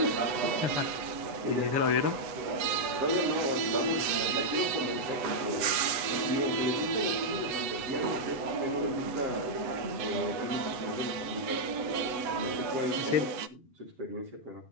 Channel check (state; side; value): late; left; 8.0 ms